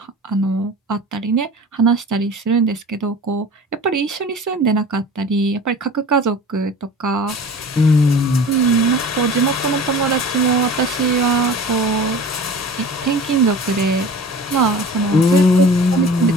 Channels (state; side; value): normal; both; correlation 0.40